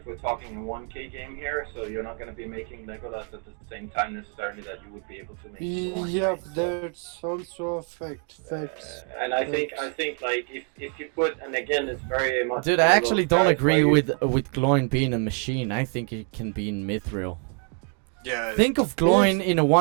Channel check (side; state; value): left; quieter; 39.7 dB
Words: we're talking a 1K game here, so you're not going to be making Legolas at the same time necessarily that you would be able to make. Gloin, yeah, right? So, that's also a fact. Facts. and I think like if you put, and again it's very much. Dude, I actually don't agree with. with Gloin being a machine. I think it can be in mithril. Yeah. Think of Gloin in a